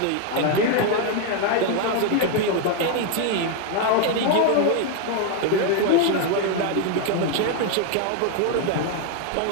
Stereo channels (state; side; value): different; both; correlation 0.01